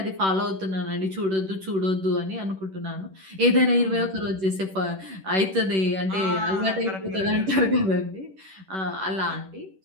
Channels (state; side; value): late; left; 10 ms